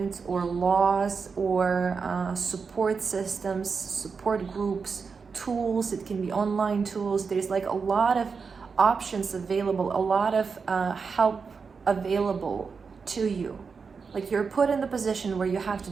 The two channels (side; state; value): left; quieter; 5.3 dB